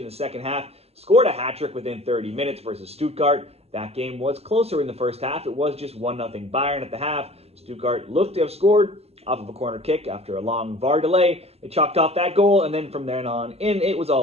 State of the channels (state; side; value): late; left; 0.29 ms